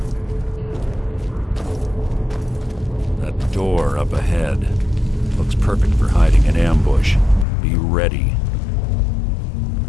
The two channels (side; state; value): right; drops out; at 7.5 s